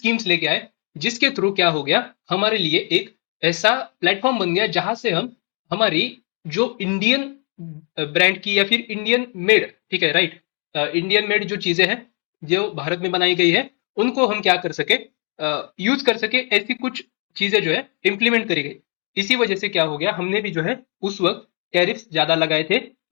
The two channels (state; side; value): quieter; right; 39.0 dB